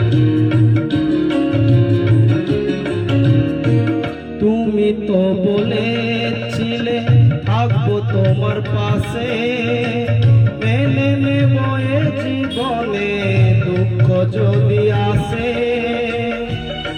তুমি তো বলেছিলে থাকবো তোমার পাশে, মেনে নেব এ জীবনে দুঃখ যদি আসে।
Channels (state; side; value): identical; both; correlation 1.00